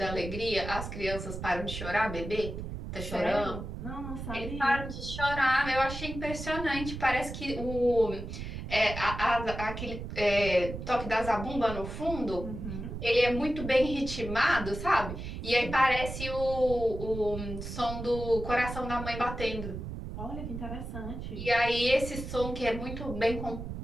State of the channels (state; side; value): noise; right; rumble, 7 dB below the sound